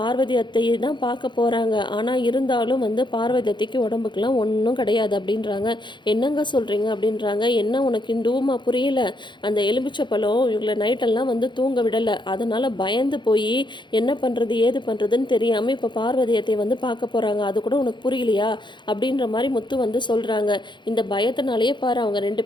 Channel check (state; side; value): late; right; 0.23 ms